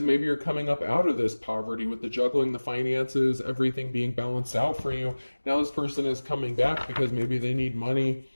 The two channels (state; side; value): inverted; both; correlation -1.00